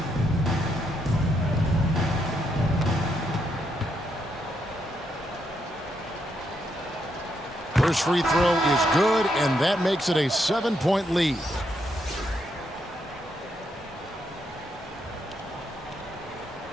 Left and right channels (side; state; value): both; normal; correlation 0.78